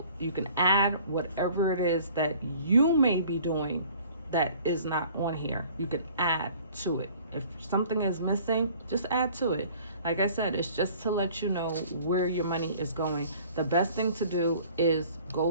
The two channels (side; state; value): both; inverted; correlation -0.51